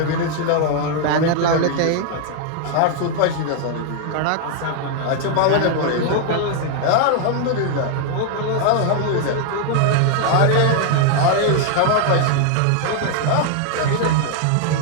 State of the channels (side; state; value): both; different; correlation 0.00